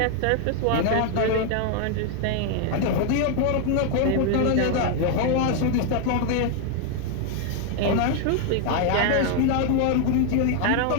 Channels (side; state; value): both; different; correlation 0.00